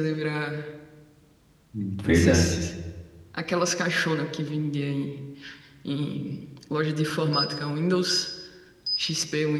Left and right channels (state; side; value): identical; both; correlation 1.00